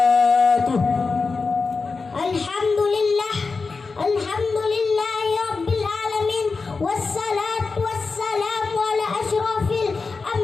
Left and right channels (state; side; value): quieter; right; 4.4 dB